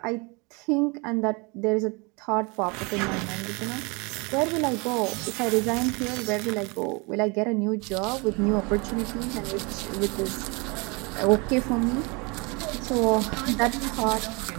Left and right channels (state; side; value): quieter; left; 29.0 dB